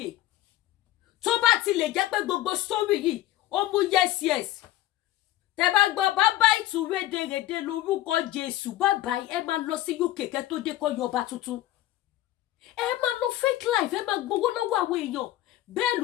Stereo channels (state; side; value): quieter; right; 14.9 dB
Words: tó bá ti lè jẹ́ pé gbogbo story yìí ó mú yes tẹ́ bá gbọ́ bàbá ìtúrédèrèdè lórúkọ Jésù bàbá ẹ máa lọ sí UK kẹ́ tó dé kọ́ yọba tuntun ẹ máa lọ fake life ẹ máa gbowó lọ́wọ́ àwọn èèyàn bẹ́ẹ̀